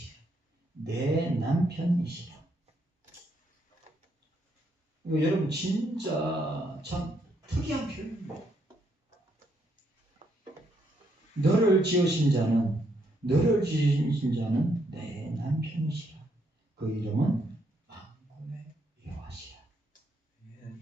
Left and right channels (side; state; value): both; normal; correlation 0.74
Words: 내 남편이시라. 이거 여러분 진짜 참 특이한 표현입니다. 너를 지으신 자는 내 남편이시라. 그 이름은 만군의 여호와시라.